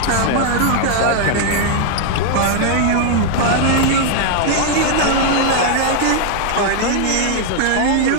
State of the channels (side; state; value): both; different; correlation 0.00